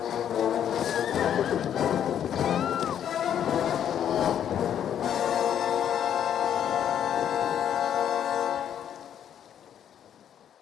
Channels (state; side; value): quieter; right; 9.6 dB